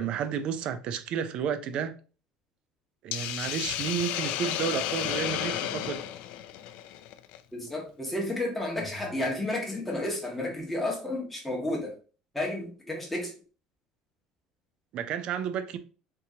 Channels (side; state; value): both; normal; correlation 0.40